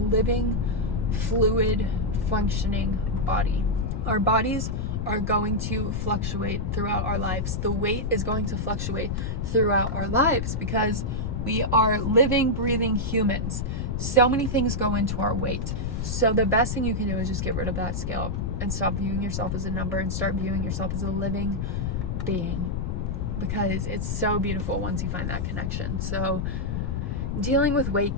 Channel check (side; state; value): left; noise; rumble, 2 dB below the sound